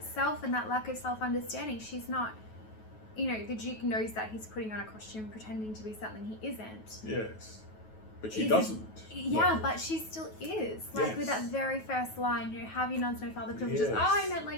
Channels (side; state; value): right; late; 9.3 ms